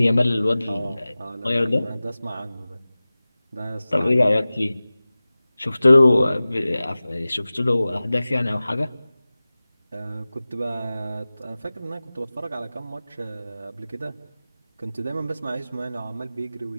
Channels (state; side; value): inverted; both; correlation -0.97